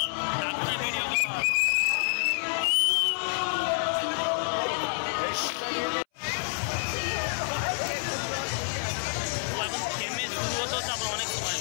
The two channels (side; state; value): right; silent; 59 dB below the other